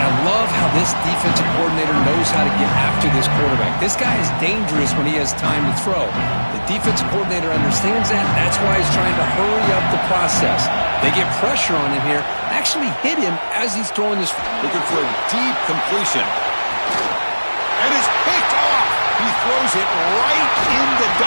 I love how this defensive coordinator knows how to get after this quarterback. This guy is dangerous when he has time to throw. The defensive coordinator understands that. That's why he's trying to hurry up the process. They get pressure on him here. Actually hit him as he's throwing this. Looking for a deep completion. And it's picked off. He throws it right into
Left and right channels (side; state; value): both; inverted; correlation -1.00